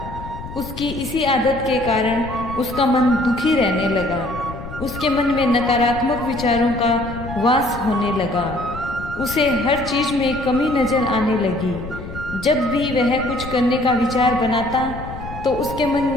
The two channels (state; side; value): noise; left; rumble, 12 dB below the sound